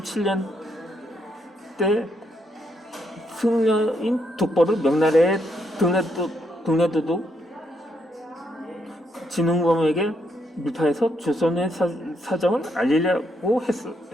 때 승려인 독보를 명나라에 등려도독 진흥범에게 밀파해서 조선의 사정을 알리려고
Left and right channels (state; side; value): normal; both; correlation 0.76